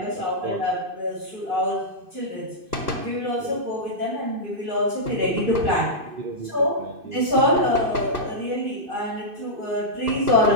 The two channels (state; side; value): late; left; 2.6 ms